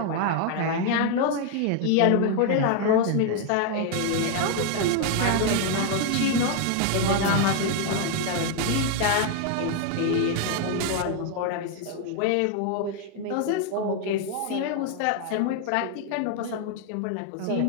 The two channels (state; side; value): different; both; correlation 0.00